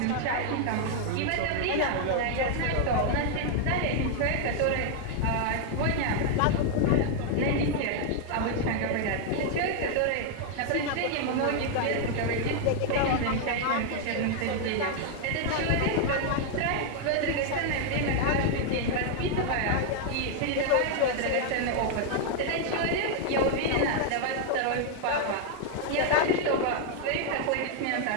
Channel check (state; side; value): different; both; correlation 0.00